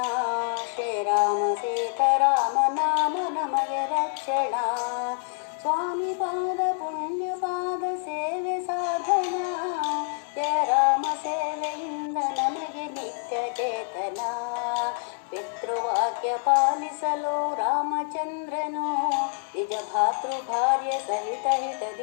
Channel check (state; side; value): silent; right; digital silence